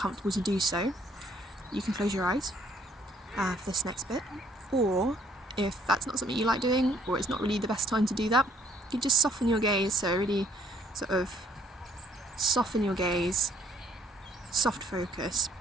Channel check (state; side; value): normal; both; correlation 0.64